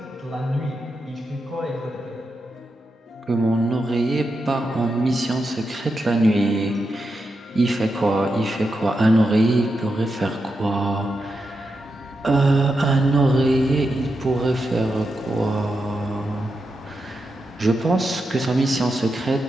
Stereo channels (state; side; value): normal; both; correlation 0.87